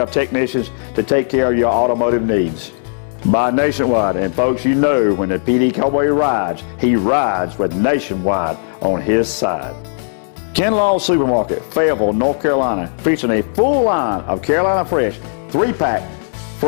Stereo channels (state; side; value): silent; right; digital silence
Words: technicians to take care of your automotive needs. By Nationwide, and folks, you know when the PD Cowboy rides, he rides with Nationwide on his side. Kinlaw Supermarket, Fayetteville, North Carolina, featuring a full line of Carolina Fresh 3-pack